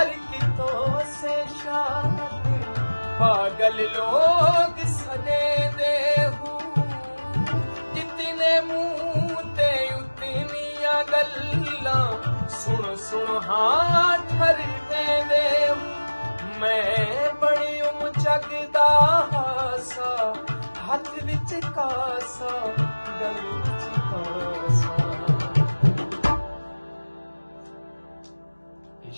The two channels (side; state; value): both; inverted; correlation -1.00